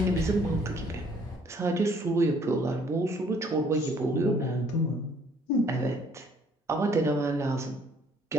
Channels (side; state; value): both; normal; correlation 0.61